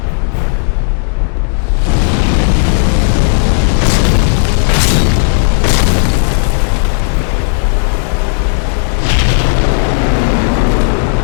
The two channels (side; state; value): right; silent; digital silence